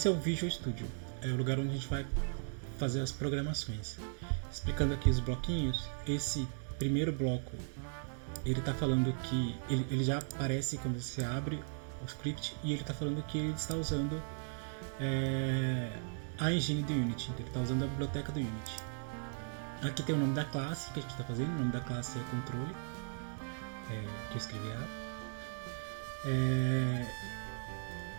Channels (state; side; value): silent; left; digital silence